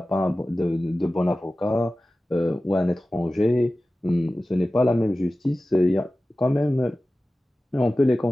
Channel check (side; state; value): both; normal; correlation 0.96